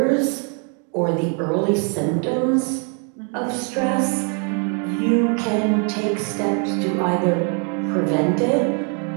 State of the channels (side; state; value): left; quieter; 39.3 dB